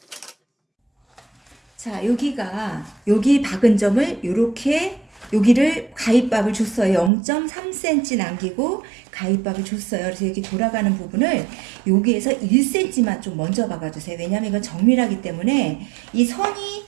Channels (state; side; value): drops out; left; at 7.1 s